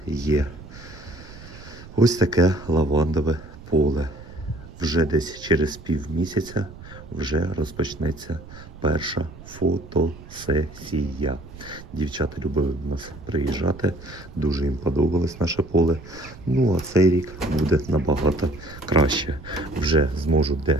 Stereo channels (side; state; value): right; noise; rumble, 17 dB below the sound